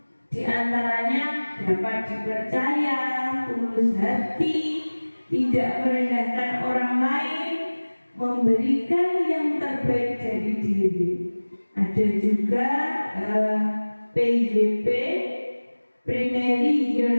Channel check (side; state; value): both; inverted; correlation -1.00